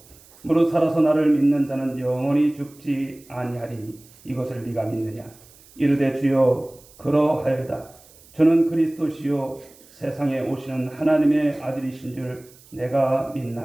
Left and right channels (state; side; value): noise; right; hiss, 25 dB below the sound